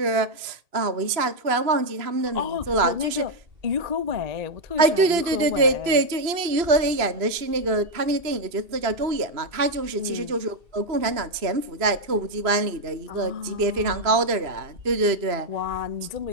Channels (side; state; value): left; late; 2.9 ms